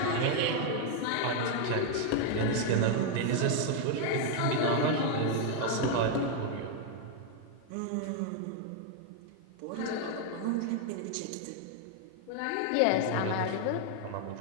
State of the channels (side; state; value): both; different; correlation 0.00